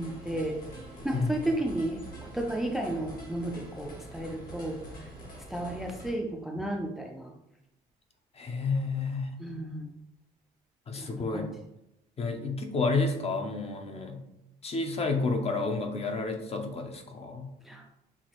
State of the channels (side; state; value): both; normal; correlation 0.64